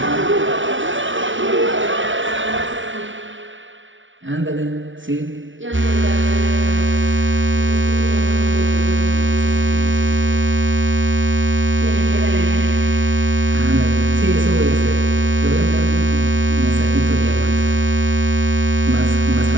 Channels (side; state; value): left; late; 0.56 ms